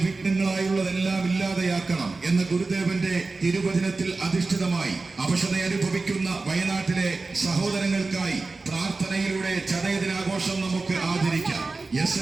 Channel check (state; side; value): quieter; left; 3.7 dB